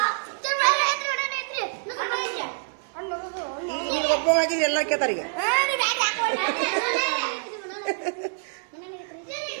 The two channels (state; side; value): silent; left; digital silence